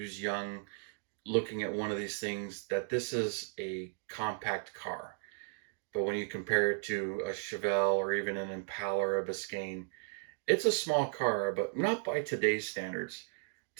young looking at one of these things that this is a compact car. But when you compare it to a Chevelle or even an Impala or a Biscayne, it's a small car, but not by today's standards.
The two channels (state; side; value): silent; left; digital silence